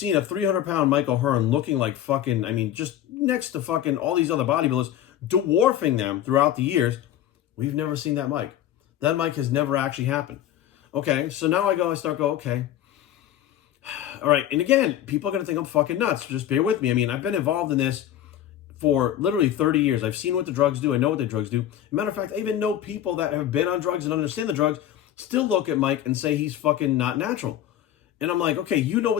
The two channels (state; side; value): quieter; right; 11.4 dB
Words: a 300-pound Mike Ohearn looking like fucking, just next to fucking all these other bodybuilders, dwarfing them throughout the years. We've never seen that Mike. That Mike has never actually happened. Okay, so now I start going, okay. All right, and again, people are going to think I'm fucking nuts. Just bear with me. I've been involved in this for literally 30 years. I've seen what the drugs do. I know what the drugs do. As a matter of fact, I even know people that have been on drugs and understand the drugs still look at Mike and say he's fucking not natural. And I'm like, okay, you know